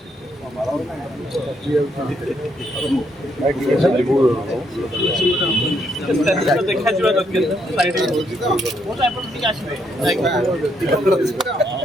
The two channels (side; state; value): both; normal; correlation 0.74